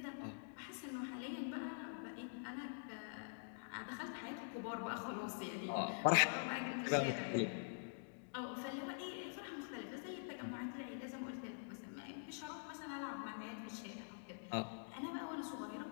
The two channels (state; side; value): silent; right; digital silence